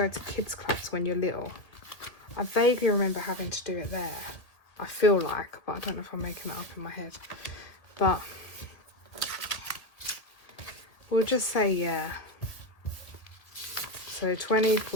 to kids clubs when you're little. I vaguely remember having to do it there. I feel like, but I don't know if I'm making it up in my head. But we'll just say yeah. So 20,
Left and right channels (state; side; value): late; right; 1.8 ms